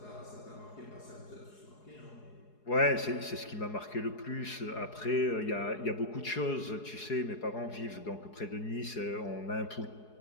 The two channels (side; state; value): right; late; 4.8 ms